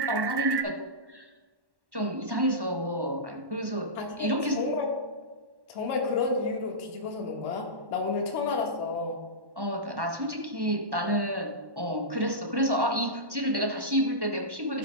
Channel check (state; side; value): late; left; 1.1 ms